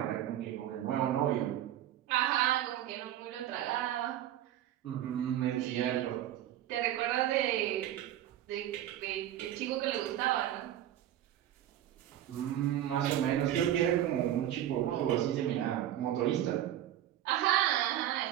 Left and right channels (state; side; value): quieter; left; 12.1 dB